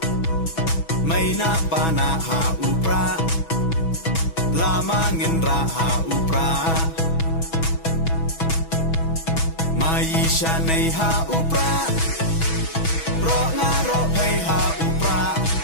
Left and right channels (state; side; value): late; right; 6.2 ms